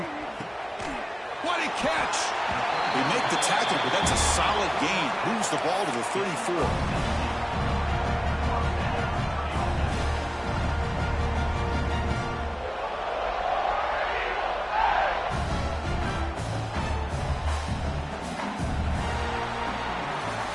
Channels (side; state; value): both; identical; correlation 1.00